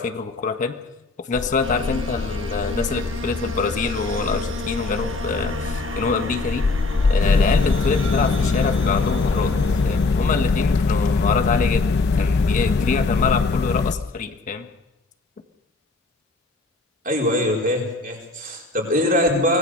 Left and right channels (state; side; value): quieter; right; 3.5 dB